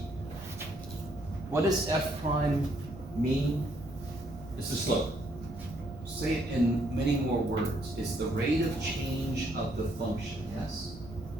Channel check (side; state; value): right; noise; rumble, 16 dB below the sound